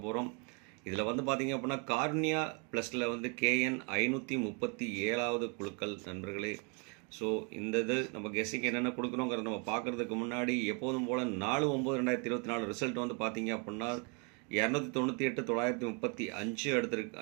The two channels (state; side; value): quieter; left; 34.9 dB